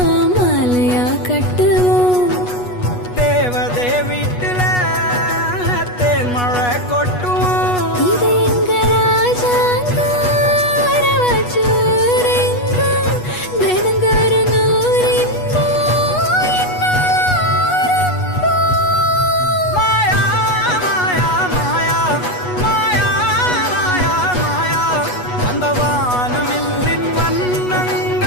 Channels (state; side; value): late; right; 8.2 ms